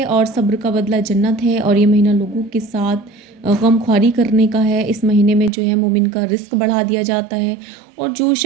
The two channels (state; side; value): drops out; left; at 5.5 s